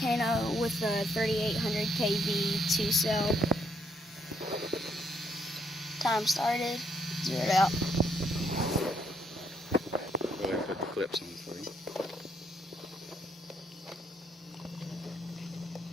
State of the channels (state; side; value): normal; both; correlation 0.73